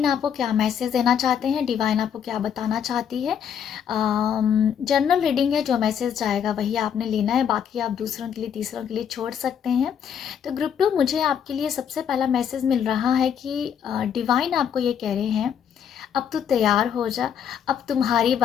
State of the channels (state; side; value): quieter; right; 8.3 dB